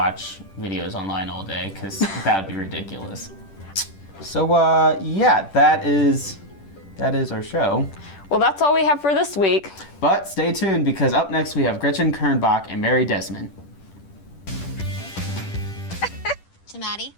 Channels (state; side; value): late; right; 10 ms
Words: videos online all day, because that would be ridiculous. So, yeah, that is our show. Well, that's all we have for this week. But stay tuned, because up next we have Gretchen Kernbach and Mary Desmond. To Maddie.